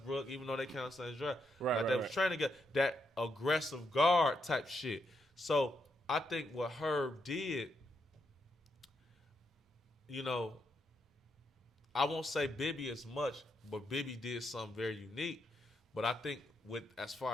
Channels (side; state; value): both; normal; correlation 0.80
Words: even though they count the same draft, they was trying to get that aggressive guard type shit. So I think what Herb did, you know, I won't say Bibby as much, but Bibby did something very unique. But I think as